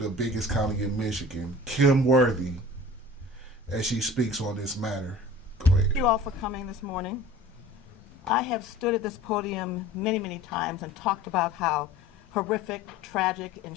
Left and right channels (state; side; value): normal; both; correlation 0.42